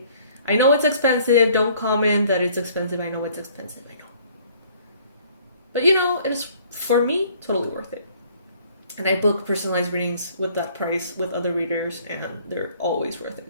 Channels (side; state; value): both; inverted; correlation -0.58